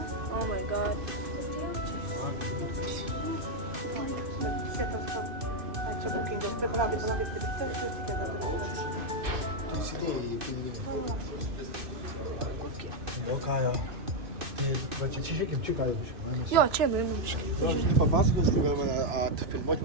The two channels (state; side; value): late; left; 2.6 ms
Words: Oh my god. Daug ką jau. Va čia žiūrėkim, čia ką jau. Jo, čia nuimam. Aš papasakosiu, tu gal mane atfilmuoti